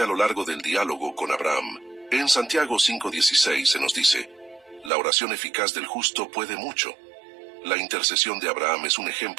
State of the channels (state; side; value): drops out; left; at 4.9 s